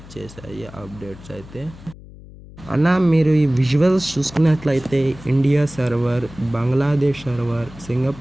అప్డేట్స్ అయితే. అన్న మీరు ఈ విజువల్స్ చూసుకున్నట్లయితే India server, Bangladesh server,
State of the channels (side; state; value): left; noise; hum, 18 dB below the sound